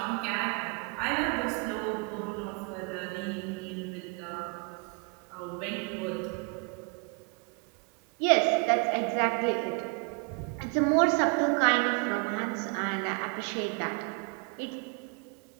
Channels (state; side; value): quieter; left; 32.9 dB